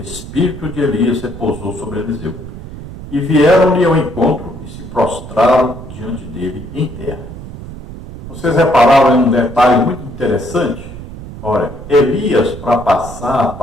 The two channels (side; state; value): right; noise; rumble, 12 dB below the sound